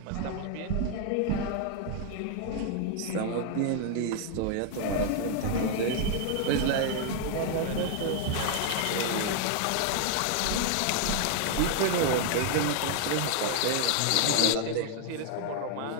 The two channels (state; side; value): different; both; correlation 0.00